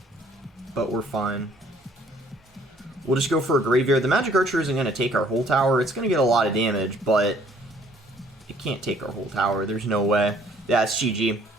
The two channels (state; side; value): normal; both; correlation 0.60